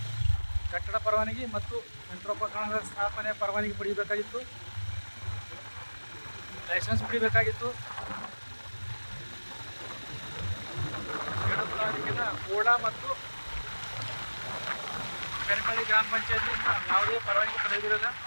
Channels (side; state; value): both; inverted; correlation -1.00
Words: ಕಟ್ಟಡ ಪರವಾನಗಿ ಮತ್ತು ಯಂತ್ರೋಪಕರಣಗಳ ಸ್ಥಾಪನೆ ಪರವಾನಗಿ ಪಡೆಯಬೇಕಾಗಿತ್ತು, ಲೈಸೆನ್ಸ್ ಪಡಿಬೇಕಾಗಿತ್ತು. ಸೇಡಂ ತಾಲೂಕಿನ ಕೋಳ ಮತ್ತು ಬೆರಕಳಿ ಗ್ರಾಮ ಪಂಚಾಯತಿಯಿಂದ ಯಾವುದೇ ಪರವಾನಗಿ ಪಡೆದಿರೋಲ್ಲ.